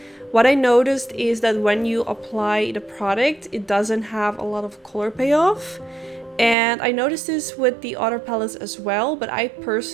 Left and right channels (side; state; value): left; drops out; at 6.6 s